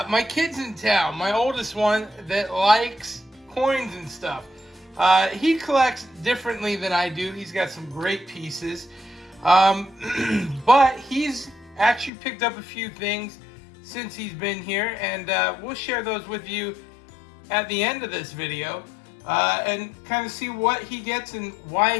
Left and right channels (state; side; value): drops out; right; at 12.1 s